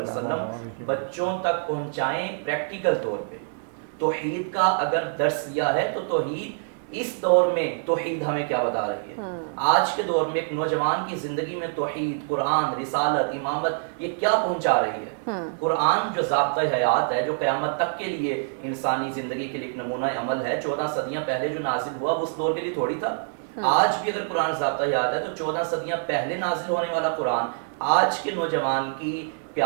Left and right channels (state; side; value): silent; left; digital silence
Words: وسلم بچوں تک پہنچائیں پریکٹیکل طور پہ. توحید کا اگر درس لیا ہے تو توحید اس دور میں توحید ہمیں کیا بتا رہی ہے. آج کے دور میں ایک نوجوان کی زندگی میں توحید، قرآن، رسالت، امامت یہ کیا پہنچا رہی ہے. قرآن جو ضابطۂ حیات ہے، جو قیامت تک کے لیے انسانی زندگی کے لیے ایک نمونہ عمل ہے، 14 صدیاں پہلے جو نازل ہوا وہ اس دور کے لیے تھوڑی تھا. آج بھی اگر قرآن ضابطۂ حیات ہے تو 14 صدیاں پہلے نازل ہونے والا قرآن آج کے نوجوان کی